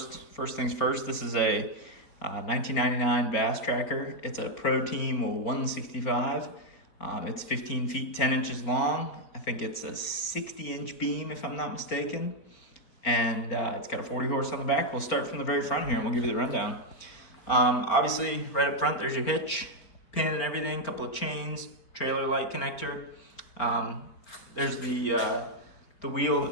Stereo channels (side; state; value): right; late; 4.4 ms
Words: things first, this is a 1999 Bass Tracker. It's a Pro Team 165. It's 15 feet 10 inches long. I think it's a 60-inch beam, if I'm not mistaken. And it's got a 40 horse on the back. We'll start from the very front here and we'll give you the rundown. Obviously, right up front, there's your hitch, pin and everything, couple of chains, trailer light connector. There's the wheel